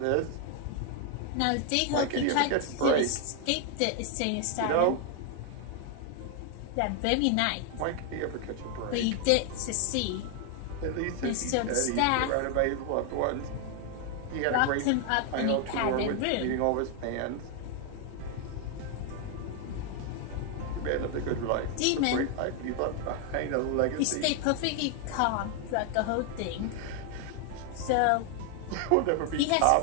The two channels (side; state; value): both; different; correlation 0.00